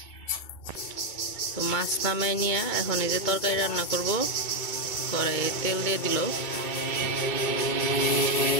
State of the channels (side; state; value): right; late; 2.2 ms